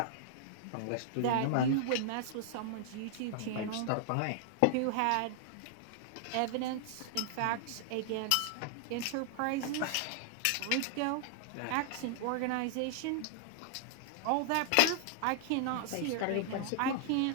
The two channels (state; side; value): different; both; correlation -0.01